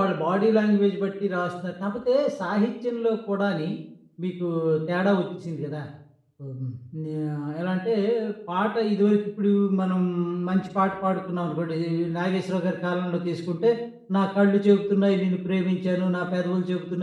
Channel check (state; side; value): identical; both; correlation 1.00